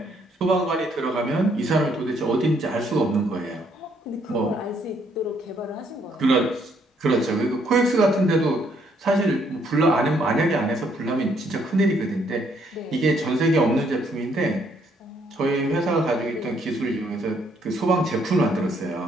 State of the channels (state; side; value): normal; both; correlation 0.69